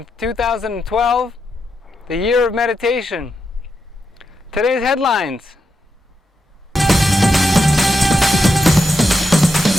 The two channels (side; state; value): both; normal; correlation 0.85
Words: 2012, the year of meditation. Today's headlines.